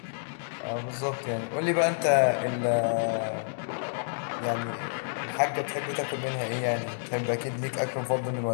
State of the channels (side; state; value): right; silent; digital silence